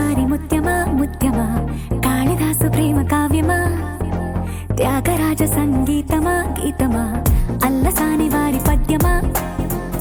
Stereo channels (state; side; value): identical; both; correlation 1.00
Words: ముత్యమా ముత్యమా కాళిదాసు ప్రేమ కావ్యమా త్యాగరాజ సంగీతమా గీతమా అల్లసాని వారి పద్యమా